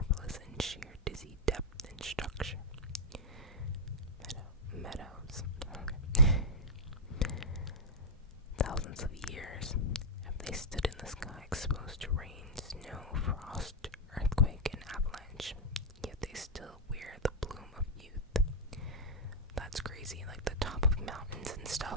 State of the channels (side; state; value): both; normal; correlation -0.04